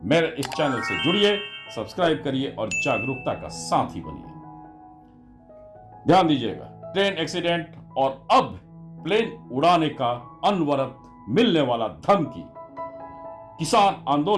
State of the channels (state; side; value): identical; both; correlation 1.00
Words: मेरे इस चैनल से जुड़िए, सब्सक्राइब करिए और जागरूकता का साथी बनिए। ध्यान दीजिएगा, ट्रेन एक्सीडेंट और अब प्लेन उड़ाने का अनवरत मिलने वाला धमकी, किसान